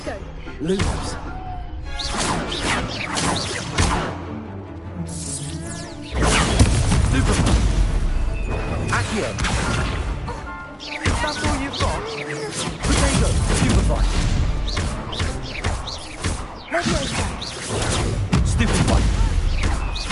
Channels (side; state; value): both; identical; correlation 1.00